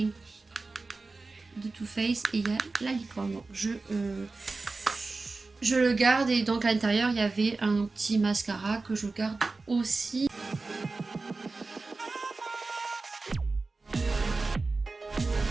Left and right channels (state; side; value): quieter; left; 3.7 dB